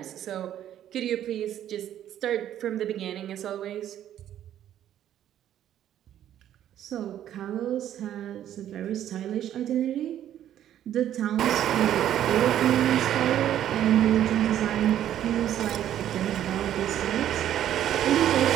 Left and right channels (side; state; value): left; quieter; 11.2 dB